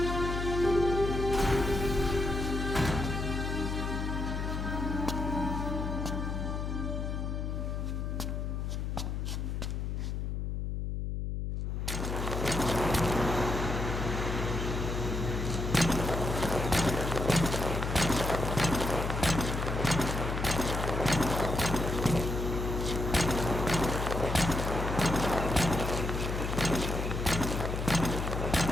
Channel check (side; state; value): left; noise; hum, 2 dB below the sound